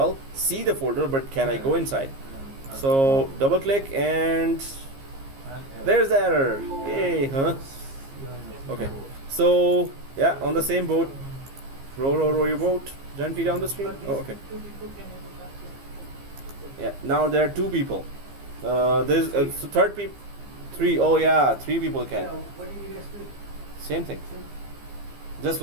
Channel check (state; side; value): late; left; 15 ms